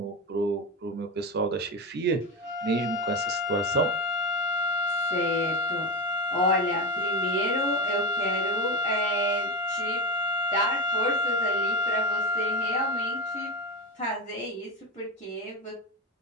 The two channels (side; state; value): both; normal; correlation 0.18